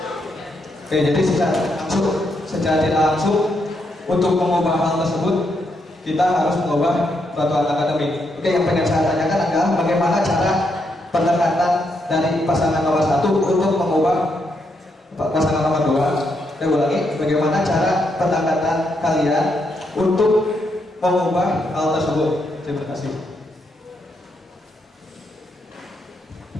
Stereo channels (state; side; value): normal; both; correlation 0.79